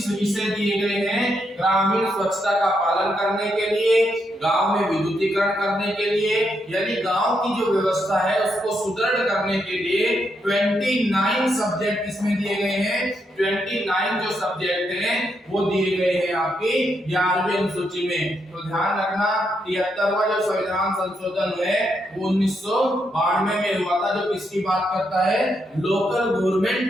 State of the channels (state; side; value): normal; both; correlation 0.80